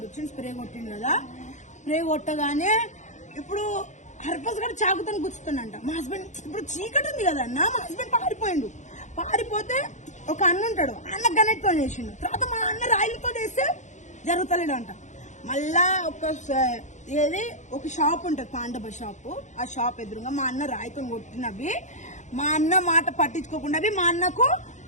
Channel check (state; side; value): late; right; 0.35 ms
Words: వచ్చిండు, స్ప్రే కొట్టిండు కదా. స్ప్రే కొట్టగానే ఇప్పుడు హర్ఫాస్ కూడా చాకుతో గుచ్చుతుండంట. మా హస్బెండ్ ఇప్పుడు చీకటి ఉంది కదా అన్న, మా హస్బెండ్ పారిపోతే ఒక అన్న ఉంటాడు, అన్న గనెట్తో చేసిండు. తర్వాత మా అన్న రాయిలతో చేస్తే జరుగుతలేడంట. మళ్ళా ఒక షాప్ ఉంటది, పాండవ షాప్. ఆ షాప్ ఎదురుగా మా అన్న రాయితో కొట్టినవి, మా అన్న మాట పట్టించుకోకుండా మా అన్నకు